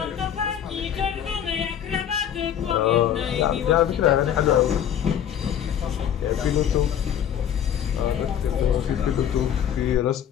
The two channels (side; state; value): right; quieter; 9.5 dB